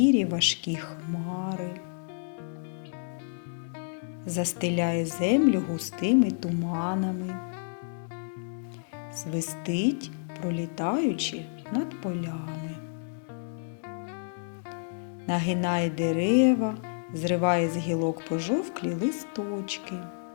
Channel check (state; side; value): silent; right; digital silence